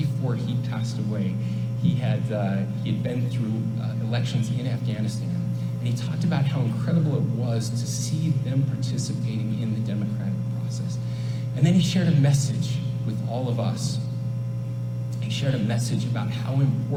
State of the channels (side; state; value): both; identical; correlation 1.00